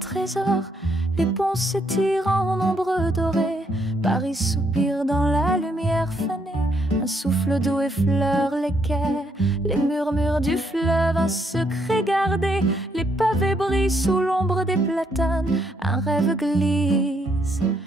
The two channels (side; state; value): both; normal; correlation 0.73